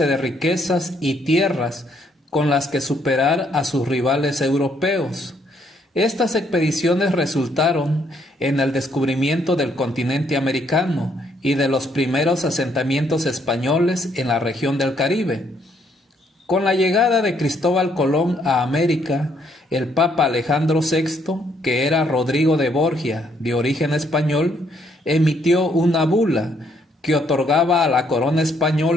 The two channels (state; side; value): normal; both; correlation 0.70